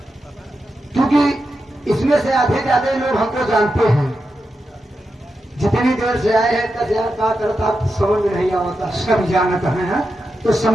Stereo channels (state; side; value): normal; both; correlation 0.88